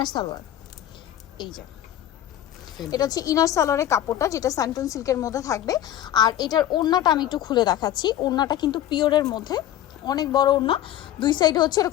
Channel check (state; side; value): quieter; right; 12.1 dB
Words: সালোয়ার। এই যে এটা হচ্ছে ইনার সালোয়ারের কাপড়টা, যেটা স্যান্টন সিল্কের মধ্যে থাকবে। আর এটার ওড়নাটা আমি একটু খুলে দেখাচ্ছি। ওড়নাটা কিন্তু পিওরের মধ্যে, অনেক বড় ওড়না, দুই সাইডে হচ্ছে